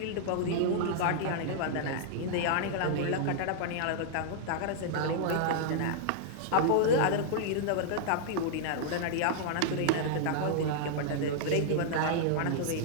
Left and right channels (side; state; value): both; different; correlation -0.01